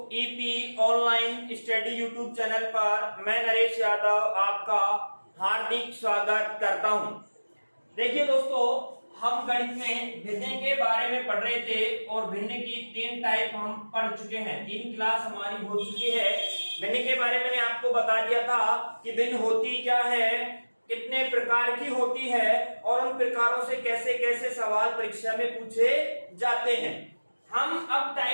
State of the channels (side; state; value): both; inverted; correlation -1.00